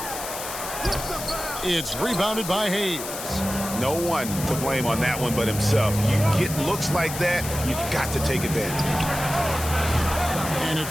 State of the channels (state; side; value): noise; left; hiss, 8 dB below the sound